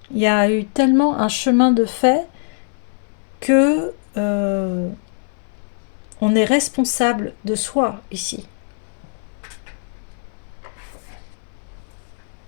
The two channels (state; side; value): silent; right; 59 dB below the other